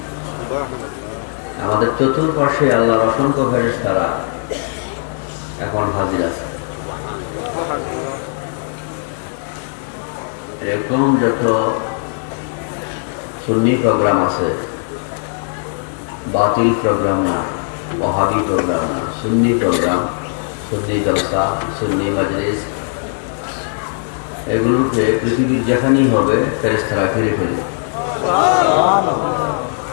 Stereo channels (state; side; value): silent; right; 63 dB below the other